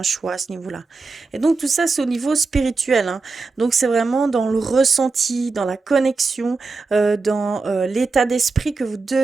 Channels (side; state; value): left; quieter; 4.0 dB